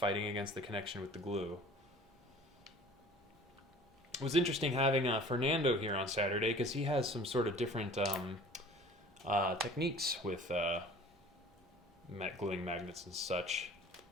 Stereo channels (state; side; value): normal; both; correlation 0.47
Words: against the connection with the glue. It was interesting having Fernando here on Saturday, because he has some sort of different techniques with gluing magnets and such.